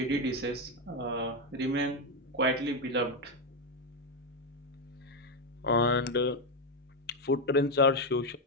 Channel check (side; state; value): both; normal; correlation 0.07